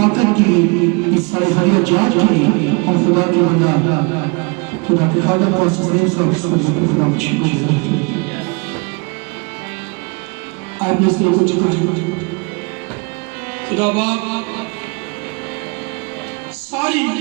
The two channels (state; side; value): quieter; left; 30.9 dB